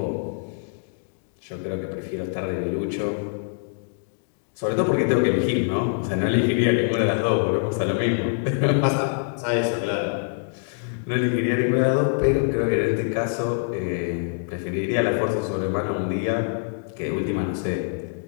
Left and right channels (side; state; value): right; silent; digital silence